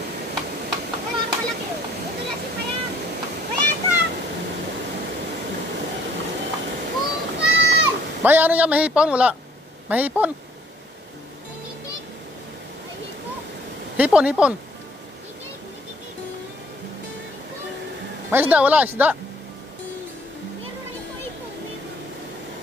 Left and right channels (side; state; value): both; normal; correlation 0.61